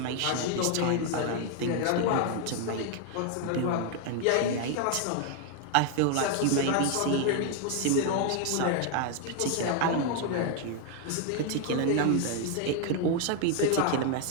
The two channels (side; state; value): both; different; correlation 0.00